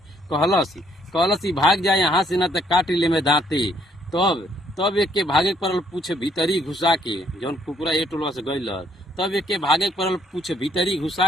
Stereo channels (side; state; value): both; normal; correlation 0.67